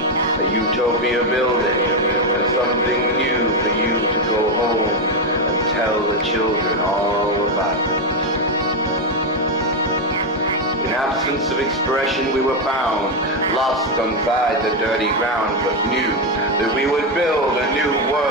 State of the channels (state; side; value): normal; both; correlation 0.07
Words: a utopia building, and something new for you to go home and tell the children all about it. In absence of expression we were found, lost inside the dirty ground, but knew that we would build a new